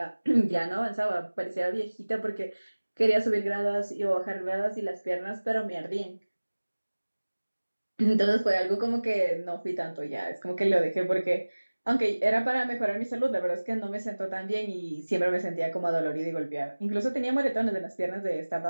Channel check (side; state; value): both; inverted; correlation -1.00